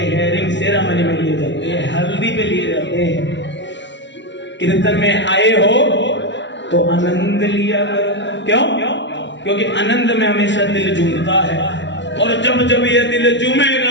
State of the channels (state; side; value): late; right; 0.52 ms